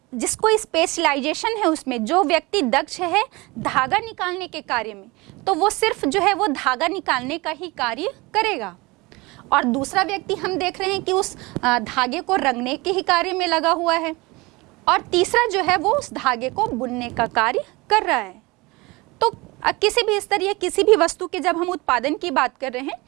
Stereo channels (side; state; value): left; quieter; 23.6 dB